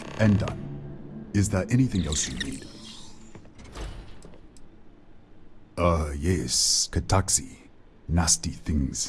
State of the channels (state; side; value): identical; both; correlation 1.00